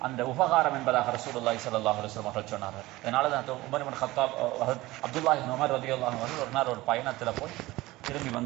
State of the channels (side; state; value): left; quieter; 18.9 dB